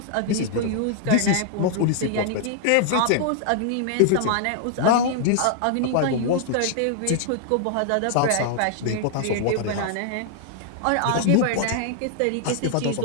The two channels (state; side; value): different; both; correlation -0.01